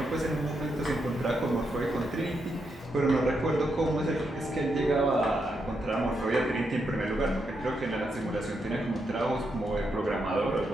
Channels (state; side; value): normal; both; correlation 0.82